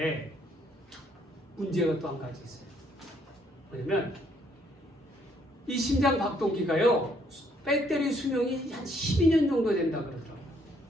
문제가 또 한 가지 있어요. 뭐냐면 이 심장 박동기가요, 배터리 수명이 한 12년 정도 된다 그러더라고요.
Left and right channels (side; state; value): both; normal; correlation 0.68